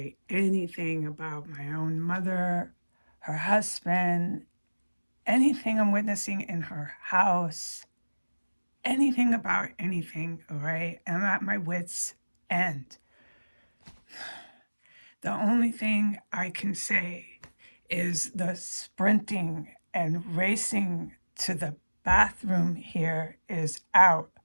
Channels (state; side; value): inverted; both; correlation -1.00